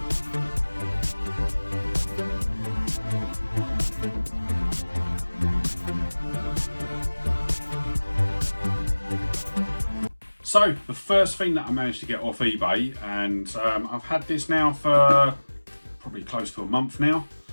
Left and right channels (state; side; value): inverted; both; correlation -1.00